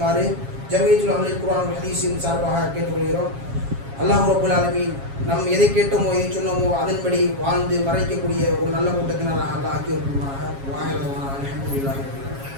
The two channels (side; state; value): left; late; 7.3 ms